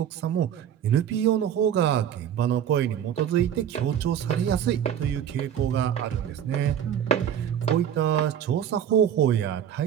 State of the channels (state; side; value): quieter; left; 9.5 dB